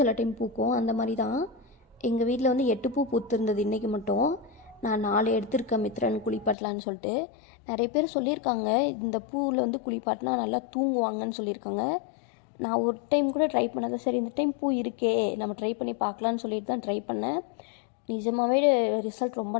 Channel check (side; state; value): right; drops out; at 6.6 s